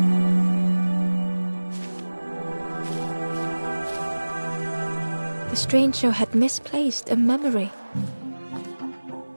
The stranger had misplaced a memory.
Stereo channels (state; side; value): inverted; both; correlation -1.00